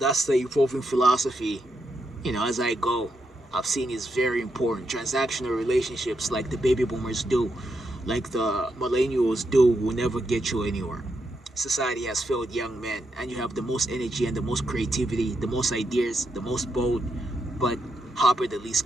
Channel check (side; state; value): both; normal; correlation 0.82